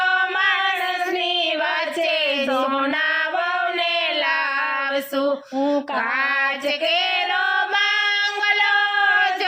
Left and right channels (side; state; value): both; identical; correlation 1.00